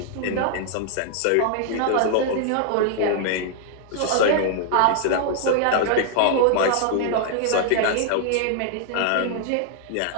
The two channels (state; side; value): different; both; correlation -0.01